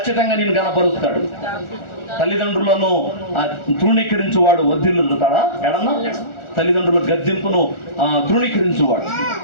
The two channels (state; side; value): late; right; 1.4 ms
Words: నిన్ను గనపరుస్తాడు. తల్లిదండ్రులను తృణీకరించువాడు వర్ధిల్లుతాడా? ఎడన్నా తల్లిదండ్రుల గద్దింపును తృణీకరించువాడు.